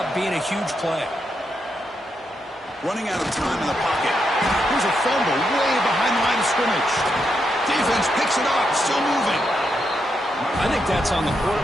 being a huge play. Running out of time in the pocket. Here's a fumble way behind the line of scrimmage. Defense picks it up. Still moving. I think that's on the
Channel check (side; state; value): both; normal; correlation 0.82